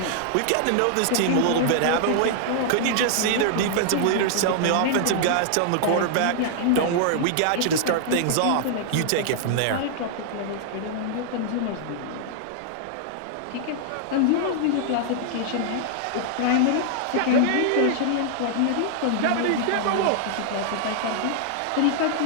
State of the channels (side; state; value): both; different; correlation -0.01